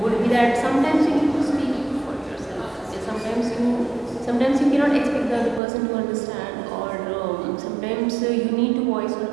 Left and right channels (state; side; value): drops out; left; at 5.6 s